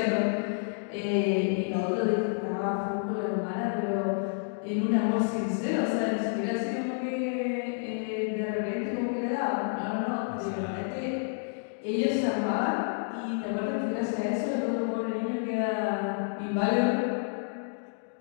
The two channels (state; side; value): silent; right; digital silence